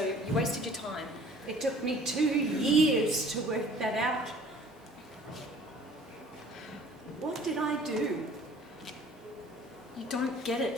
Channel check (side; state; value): both; normal; correlation 0.51